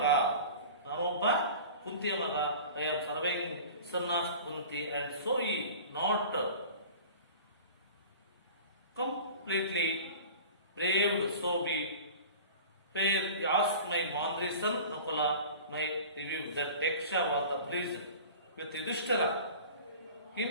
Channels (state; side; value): inverted; both; correlation -0.39